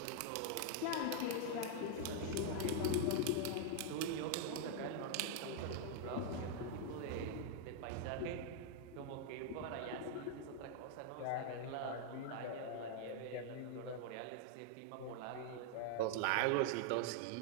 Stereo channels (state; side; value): different; both; correlation 0.00